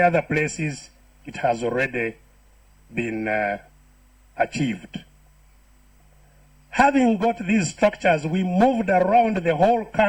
places, it has already been achieved. Having got these structures, we moved around the whole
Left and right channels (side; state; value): both; identical; correlation 1.00